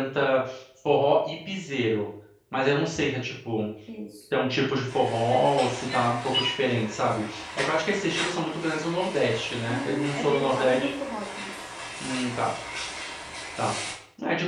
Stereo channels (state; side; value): identical; both; correlation 1.00